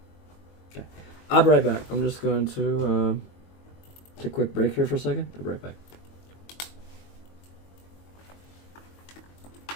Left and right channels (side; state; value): right; late; 22 ms